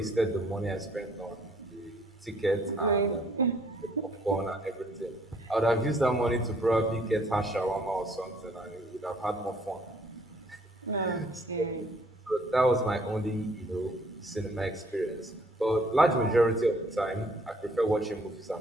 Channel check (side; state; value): both; normal; correlation 0.62